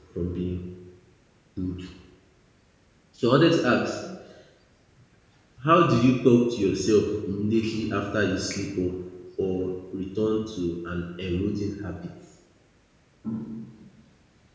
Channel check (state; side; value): identical; both; correlation 1.00